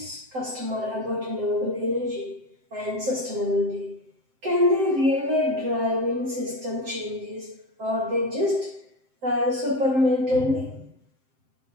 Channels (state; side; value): late; left; 7.7 ms